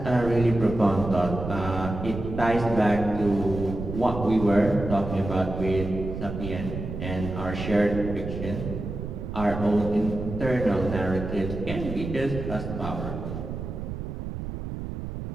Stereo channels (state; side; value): noise; right; rumble, 6 dB below the sound